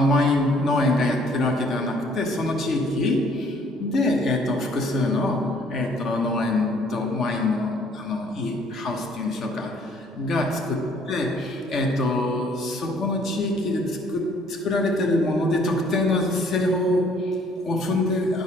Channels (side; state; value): both; normal; correlation 0.60